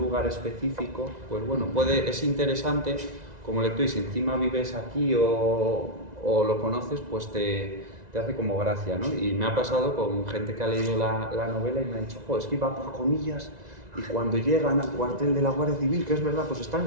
específico, pues bueno, es interesante como lector, y si encima vives aquí o lo conoces, pues te hace como gracia, ¿no? Y me ha pasado con gente que ha leído la novela y me ha dicho, es que iba por comillas y cuando llegan al cuartel de la Guardia Civil, que es verdad, pues está en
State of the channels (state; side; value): late; left; 1.9 ms